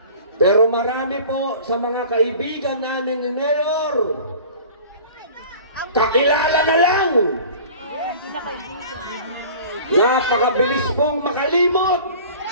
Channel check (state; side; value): inverted; both; correlation -0.43